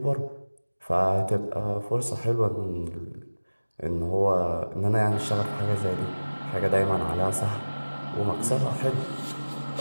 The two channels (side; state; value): both; inverted; correlation -1.00